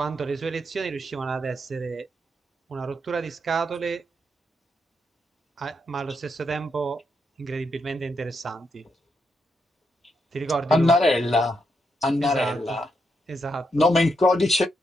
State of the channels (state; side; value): normal; both; correlation 0.81